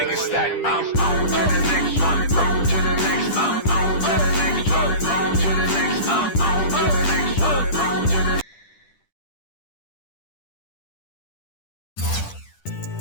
it stack. I'm on to the next one. On to the next. I'm on to the next one. On to the next. I'm on to the next one. On to the.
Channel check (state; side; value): late; right; 10 ms